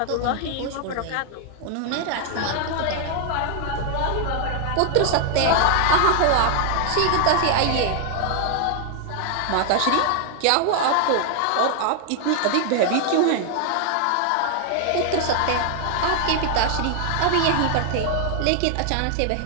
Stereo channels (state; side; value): different; both; correlation 0.00